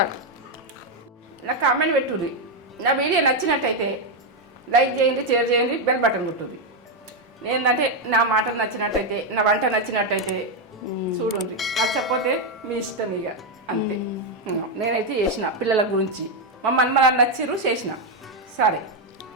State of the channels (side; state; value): both; normal; correlation 0.04